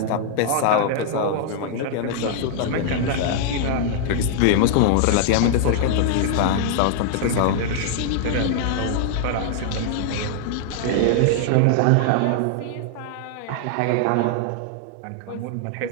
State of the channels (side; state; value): both; different; correlation -0.01